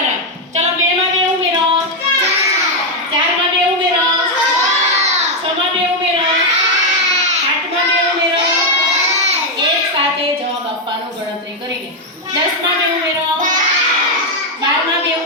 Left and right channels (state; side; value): normal; both; correlation 0.02